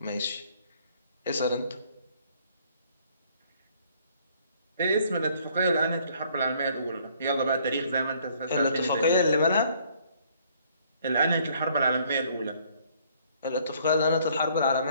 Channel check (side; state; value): both; inverted; correlation -0.62